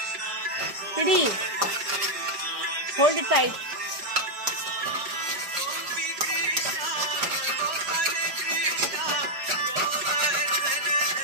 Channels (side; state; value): left; late; 4.9 ms